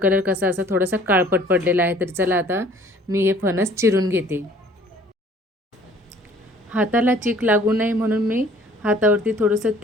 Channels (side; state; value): both; normal; correlation 0.54